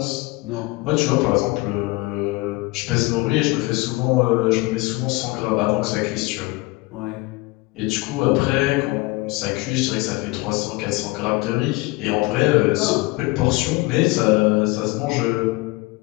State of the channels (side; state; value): right; quieter; 23.1 dB